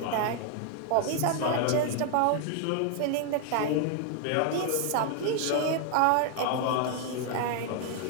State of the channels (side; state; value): both; different; correlation 0.00